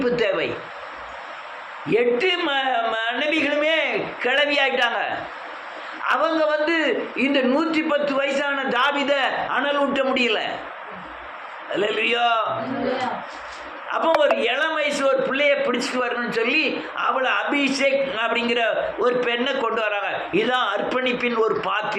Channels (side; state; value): both; identical; correlation 1.00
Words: தேவை. 8 மனைவிகளுமே கிளவி ஆயிட்டாங்க. அவங்க இந்த 110 வயசான தாவீத அனல் ஊட்ட முடியல. அல்லேலூயா. அப்போ ஒரு இளம் வயசு ஒரு பிள்ளைய பிடிச்சிட்டு வரணும்னு சொல்லி அவளை அபிஷேக் அப்படிங்கிற ஒரு பெண்ணை கொண்டு வராங்க. இதுதான் அர்ப்பணிப்பின் ஒரு